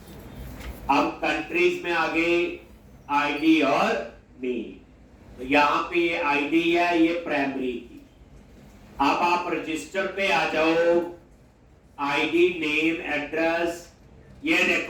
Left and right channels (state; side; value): identical; both; correlation 1.00